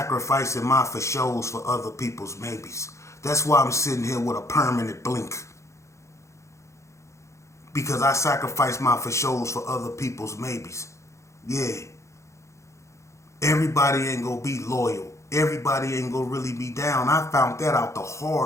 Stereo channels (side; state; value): right; late; 0.14 ms